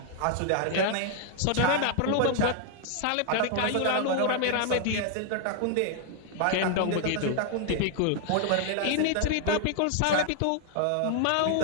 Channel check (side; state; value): both; different; correlation 0.00